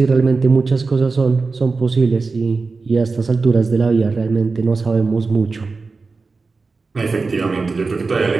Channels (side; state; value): left; quieter; 4.1 dB